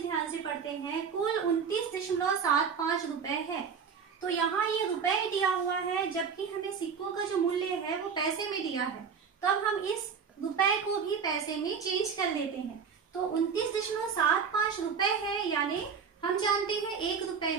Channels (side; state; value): left; quieter; 6.3 dB